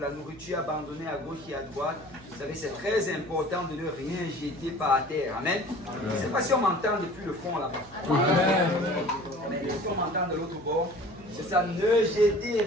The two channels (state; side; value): noise; right; hum, 21 dB below the sound